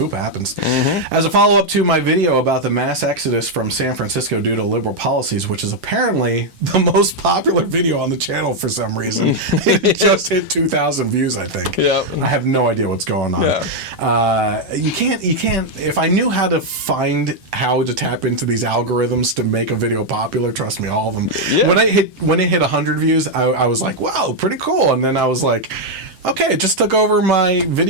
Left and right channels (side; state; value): left; late; 7.7 ms